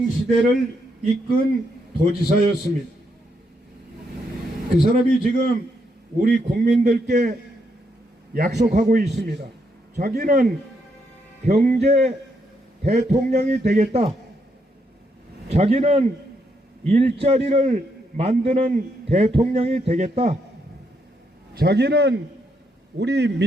이끈 도지사였습니다. 그 사람이 지금 우리 국민들께 약속하고 있습니다. 자기는 경제 대통령이 되겠다. 자기는 일자리를 만드는 대통령이 되겠다. 자기는 우리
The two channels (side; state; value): both; normal; correlation 0.78